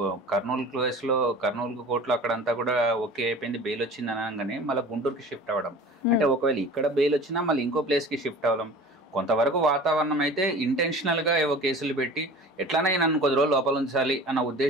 కర్నూలు కేసులో కర్నూలు కోర్టులో అక్కడంతా కూడా ఓకే అయిపోయింది, బెయిల్ వచ్చింది అనగానే మళ్ళీ గుంటూరుకి షిఫ్ట్ అవ్వడం. అంటే ఒకవేళ ఇక్కడ బెయిల్ వచ్చినా మళ్ళీ ఇంకో ప్లేస్కి షిఫ్ట్ అవ్వడం. కొంతవరకు వాతావరణం అయితే ఇంటెన్షనల్గా ఏవో కేసులు పెట్టి ఎట్లనైనా నన్ను కొద్ది రోజులు లోపల ఉంచాలి అన్న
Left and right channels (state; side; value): normal; both; correlation 0.40